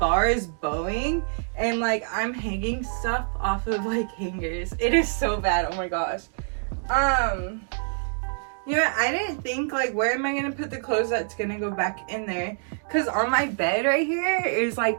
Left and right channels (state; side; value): silent; left; digital silence